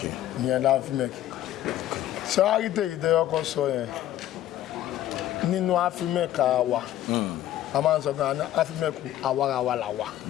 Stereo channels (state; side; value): quieter; right; 12.9 dB